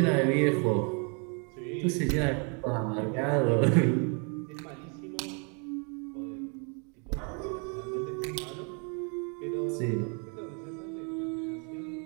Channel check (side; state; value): left; quieter; 36.7 dB